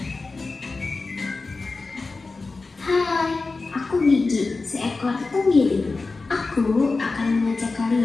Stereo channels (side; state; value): right; quieter; 3.8 dB